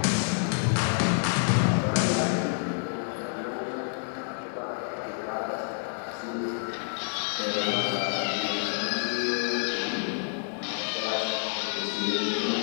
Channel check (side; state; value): right; silent; 59 dB below the other